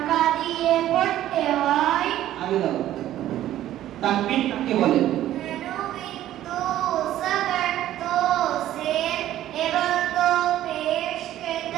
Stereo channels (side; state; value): left; quieter; 13.0 dB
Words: দিয়ে পড়তে হয়। আগে দাও। তানবিন কাকে বলে? তো সবর তো সের এবং তো পেশ